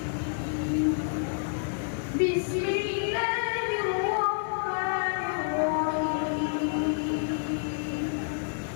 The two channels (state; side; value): silent; right; digital silence